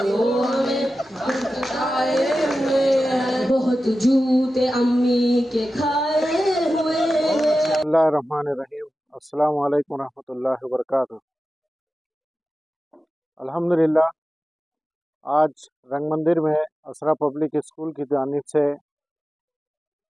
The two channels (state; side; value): normal; both; correlation 0.93